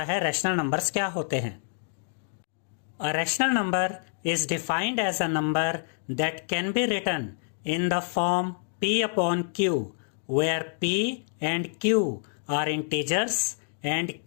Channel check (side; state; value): right; silent; digital silence